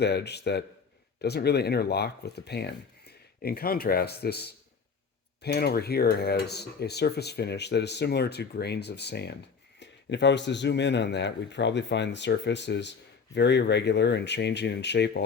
edge that doesn't really interlock with the pan. In contrast, this pan over here has a surface finish that is similar to grains of sand. And if I was to zoom in on that, we'd probably find the surface is very irregular and changing in shape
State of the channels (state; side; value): quieter; right; 5.5 dB